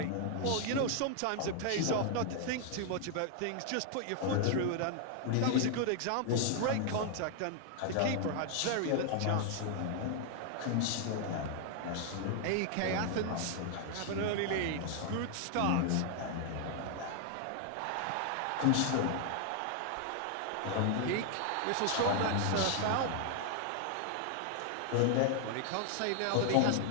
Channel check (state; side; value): different; both; correlation 0.00